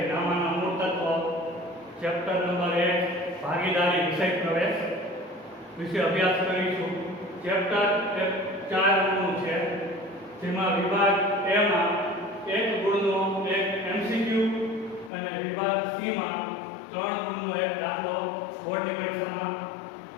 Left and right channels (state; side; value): drops out; right; at 15.1 s